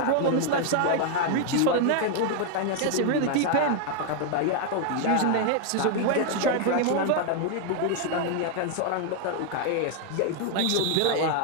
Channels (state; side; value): different; both; correlation 0.00